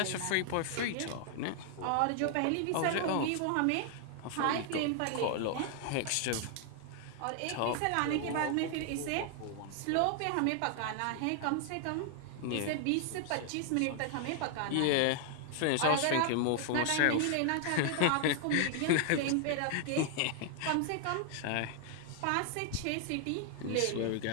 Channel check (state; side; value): different; both; correlation 0.00